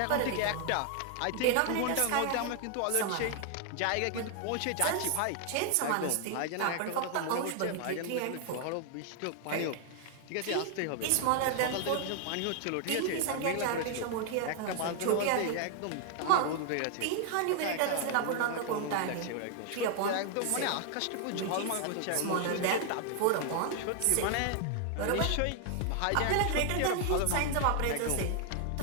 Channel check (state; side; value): different; both; correlation 0.00